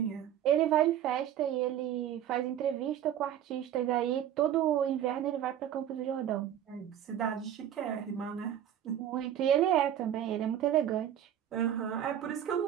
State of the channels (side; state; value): left; quieter; 10.6 dB